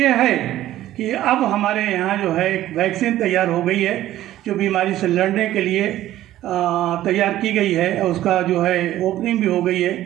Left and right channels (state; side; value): quieter; left; 13.9 dB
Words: है कि अब हमारे यहाँ जो है एक वैक्सीन तैयार हो गई है जो बीमारी से लड़ने के लिए तैयार की गई है, और उसका जो है ओपनिंग भी हो गई